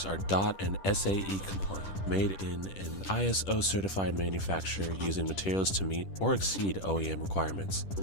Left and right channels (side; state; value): right; late; 10 ms